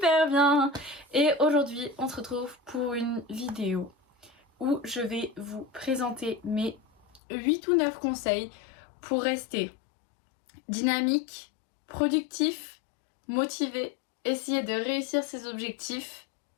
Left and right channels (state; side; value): drops out; right; at 7.2 s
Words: bien. Et aujourd'hui on se retrouve pour une vidéo où je vais vous présenter mes 8 ou 9 conseils pour rester dynamique, productif, motivé, essayer de réussir ses objectifs